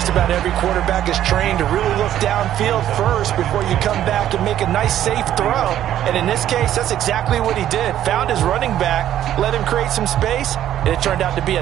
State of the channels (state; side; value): quieter; left; 11.7 dB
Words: about every quarterback is trained to really look downfield first before you come back and make a nice, safe throw. And in this case, that's exactly what he did. Found his running back, let him create some space, and it turned out to be a